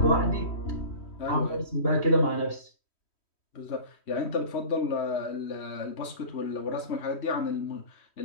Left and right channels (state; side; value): late; right; 3.1 ms